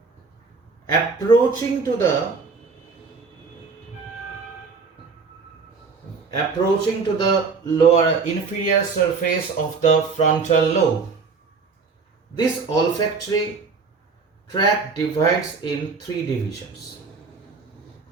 Approaching to the lower inferior surface of the frontal lobe, this olfactory tract divides in three divisions.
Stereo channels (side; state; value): left; quieter; 4.8 dB